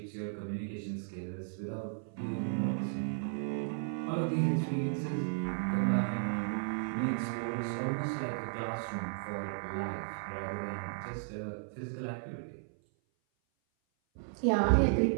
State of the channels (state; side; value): silent; left; 55 dB below the other